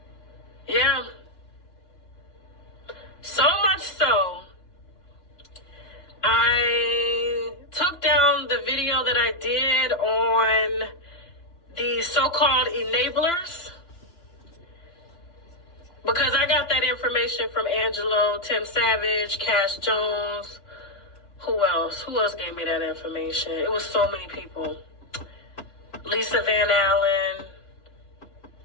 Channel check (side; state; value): right; late; 2.9 ms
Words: Yeah. So much so, I took down the video that I did on the so-called enablers because I got that information from Angelo, Tim Savage, Cash Jones. Who else? Who else gave me that information? It was so many people. Lisa Van Allen.